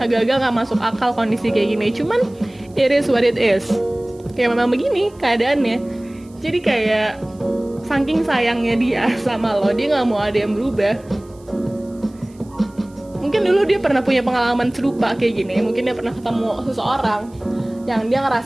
nggak masuk akal kondisi kayak gini. Cuman it is what it is. Kayak memang begini keadaannya. Jadi kayak saking sayangnya dia sama lo, dia nggak mau ada yang berubah. Mungkin dulu dia pernah punya pengalaman serupa kayak gini. Mungkin dia pernah ketemu seseorang yang dia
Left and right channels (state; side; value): noise; right; hiss, 30 dB below the sound